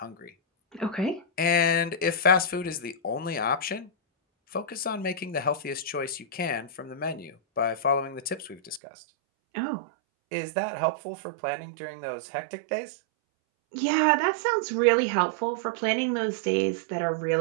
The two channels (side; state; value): left; drops out; at 8.8 s